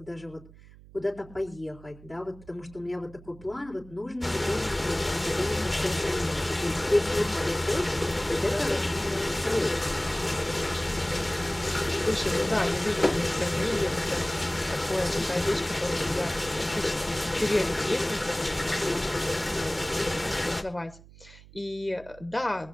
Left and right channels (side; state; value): right; noise; hum, 21 dB below the sound